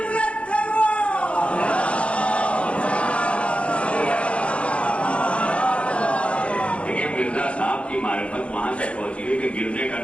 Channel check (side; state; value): right; late; 0.061 ms